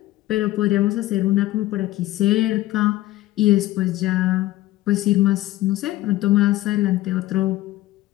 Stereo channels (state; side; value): quieter; right; 16.5 dB